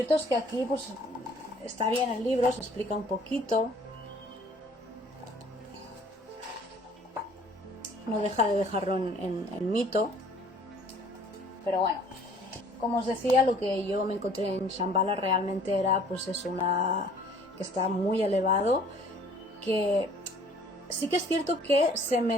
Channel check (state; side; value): normal; both; correlation 0.55